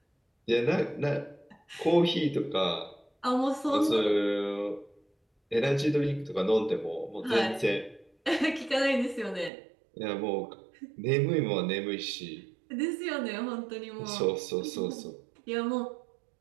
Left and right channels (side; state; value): left; drops out; at 9.5 s